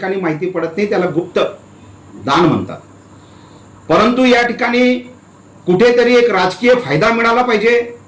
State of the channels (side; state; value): both; identical; correlation 1.00